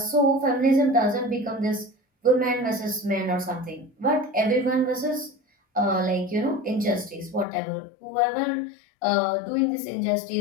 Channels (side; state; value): right; drops out; at 7.5 s